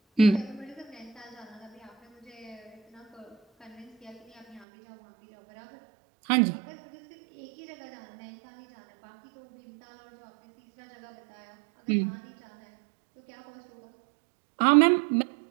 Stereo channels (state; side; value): drops out; left; at 4.7 s